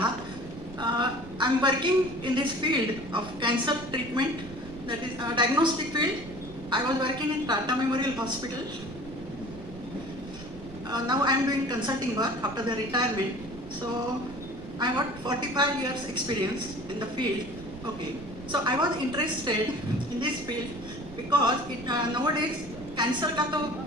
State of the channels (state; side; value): noise; right; rumble, 15 dB below the sound